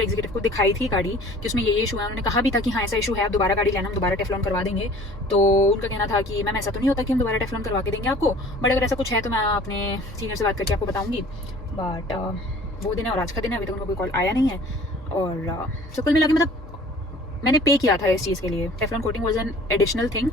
एग्जीक्यूटिव को दिखाई थी गाड़ी कि उसमें ये इशू है, उन्होंने कहा भी था कि हाँ ऐसा इशू है, आप दोबारा गाड़ी लेना, हम दोबारा टेफ्लॉन करवा देंगे। तो उनका कहना था कि मैम ऐसा तो नहीं होता कि हम दोबारा टेफ्लॉन करवा के देंगे आपको, बट अगर ऐसा कुछ है तो मैं अपने सीनियर से बात करके आपको बताऊँगी। बट वो दिन है और आज का दिन है, अभी तक उनको कोई कॉल आया नहीं है। और so कुल मिला के मतलब मैंने पे किया था इस चीज़ के लिए, Teflon coating was an additional thing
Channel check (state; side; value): normal; both; correlation 0.49